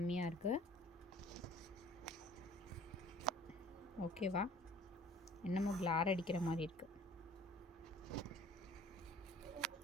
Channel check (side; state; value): both; normal; correlation 0.50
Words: இருக்குது. ஓகேவா? என்னமோ கிளார் அடிக்கிற மாதிரி இருக்குது.